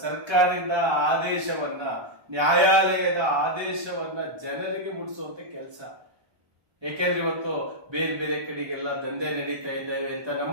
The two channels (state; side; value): late; left; 1.3 ms